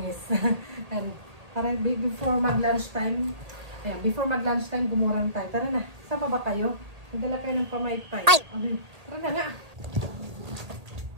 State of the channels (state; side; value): late; left; 1.8 ms